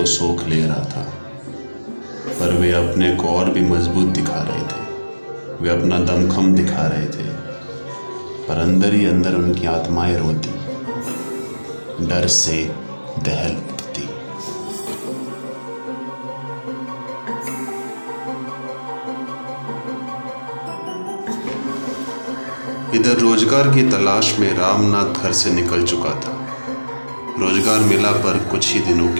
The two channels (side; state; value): both; inverted; correlation -1.00